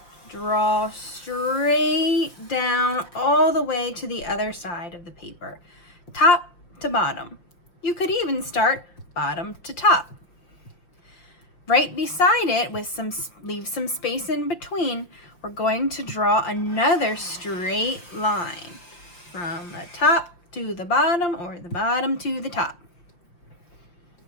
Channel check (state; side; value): late; right; 5.6 ms